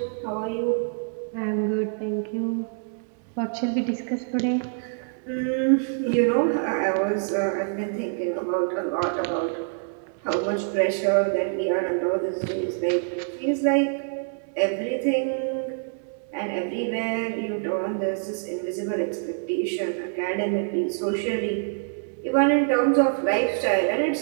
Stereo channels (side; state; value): left; silent; 61 dB below the other